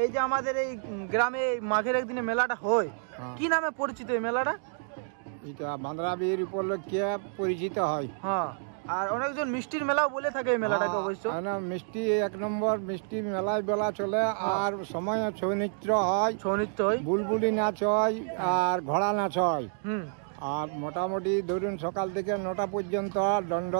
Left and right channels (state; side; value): silent; left; digital silence